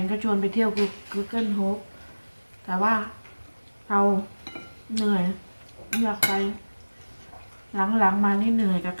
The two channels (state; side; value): inverted; both; correlation -1.00